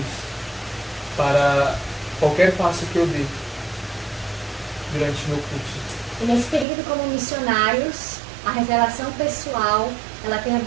para qualquer passo que eu dê durante o meu curso. E nesse período como missionários, a revelação pessoal, ela tem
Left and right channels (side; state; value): left; drops out; at 6.7 s